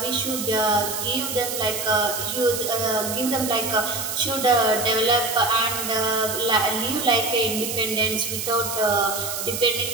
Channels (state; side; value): noise; right; hiss, 4 dB below the sound